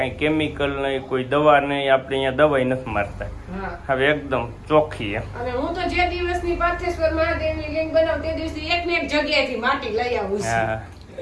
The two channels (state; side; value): identical; both; correlation 1.00